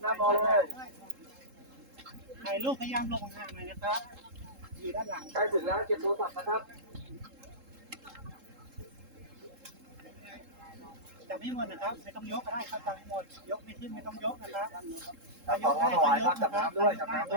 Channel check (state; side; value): late; left; 3.7 ms